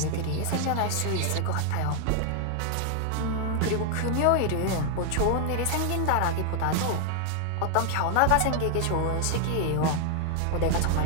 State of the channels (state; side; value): different; both; correlation 0.00